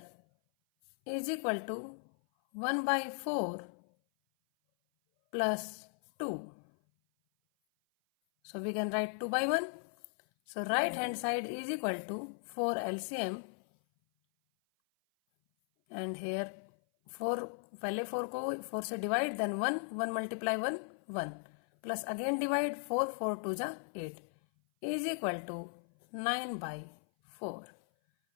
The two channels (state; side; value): silent; right; 53 dB below the other